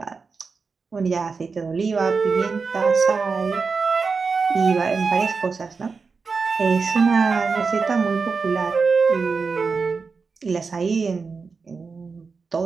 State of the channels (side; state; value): left; quieter; 4.8 dB